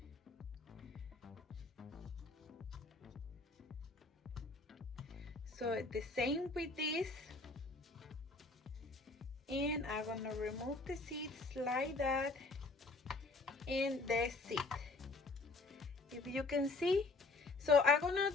So the same with this, and I'm gonna remove the seeds like that, and that's it. If you can see. So I'm gonna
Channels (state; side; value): quieter; right; 3.6 dB